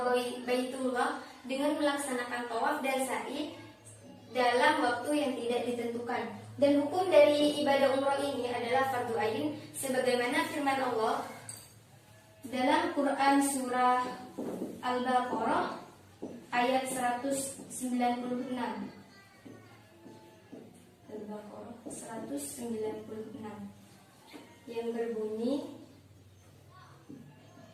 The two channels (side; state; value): both; identical; correlation 1.00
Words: Baitullah dengan melaksanakan tawaf dan sa'i dalam waktu yang tidak ditentukan. Dan hukum dari ibadah umroh ini adalah fardu ain, sebagaimana firman Allah dalam Quran surah Al-Baqarah ayat 196. Al-Baqarah 196 yang berbunyi,